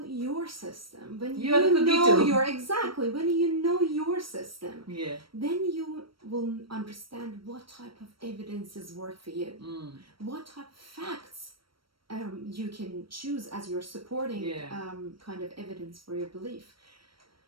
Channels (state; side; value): late; left; 0.74 ms